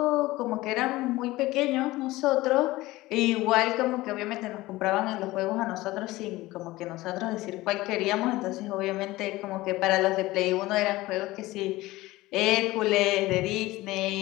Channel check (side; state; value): right; quieter; 18.6 dB